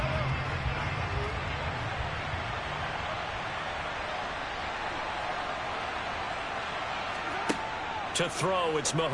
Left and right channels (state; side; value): identical; both; correlation 1.00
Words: To throw, it's